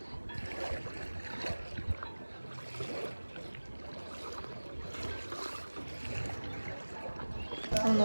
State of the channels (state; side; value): inverted; both; correlation -1.00